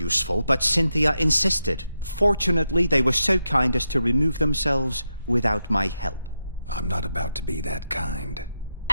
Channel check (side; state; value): both; inverted; correlation -0.86